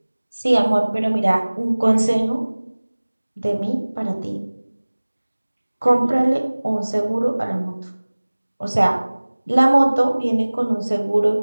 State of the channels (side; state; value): both; inverted; correlation -1.00